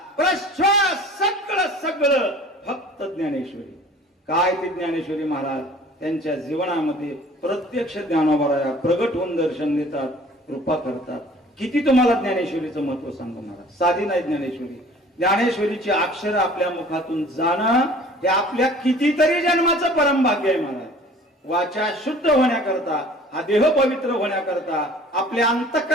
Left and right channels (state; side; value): normal; both; correlation 0.48